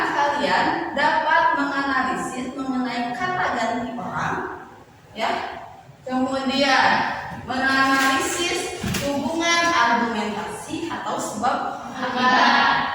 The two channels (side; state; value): both; identical; correlation 1.00